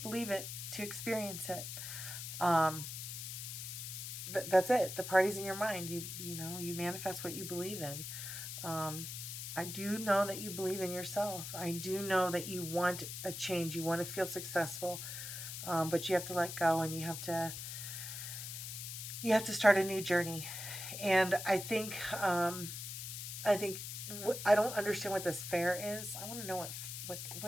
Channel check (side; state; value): left; noise; hiss, 7 dB below the sound